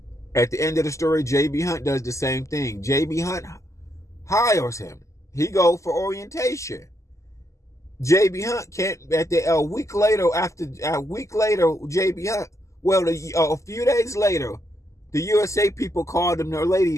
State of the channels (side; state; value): right; late; 0.15 ms